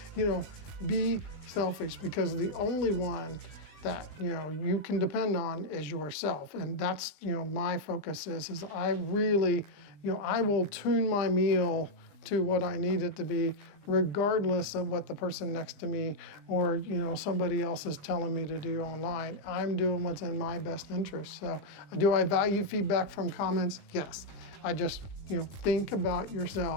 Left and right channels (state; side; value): late; right; 20 ms